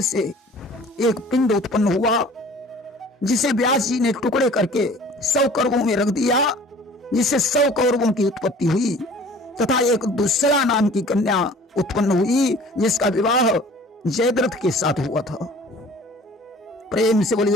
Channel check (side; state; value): both; normal; correlation 0.48